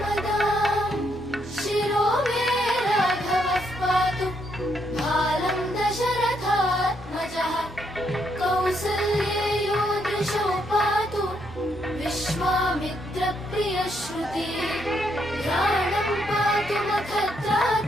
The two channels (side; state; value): both; normal; correlation 0.76